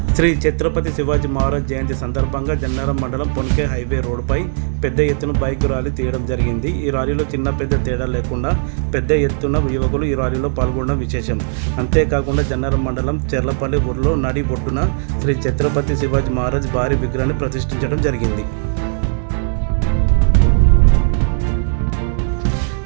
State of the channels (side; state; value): left; silent; digital silence